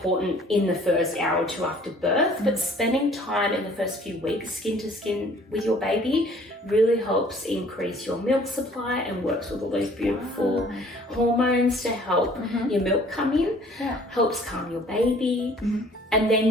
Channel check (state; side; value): normal; both; correlation 0.55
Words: in the first hour or two after birth, but spending time in the first few weeks skin to skin with your baby really helps increase your milk supply and works with all those beautiful hormones to help your milk come in, helps calm your baby, and then